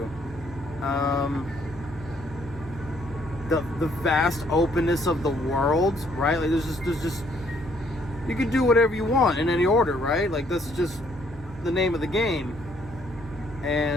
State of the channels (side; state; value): both; normal; correlation 0.67